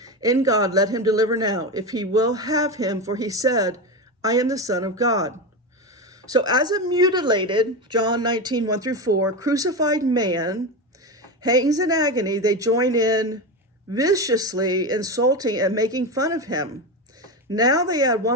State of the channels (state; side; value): normal; both; correlation 0.18